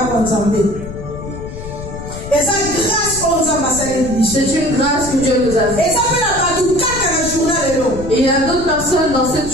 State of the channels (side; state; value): left; noise; rumble, 11 dB below the sound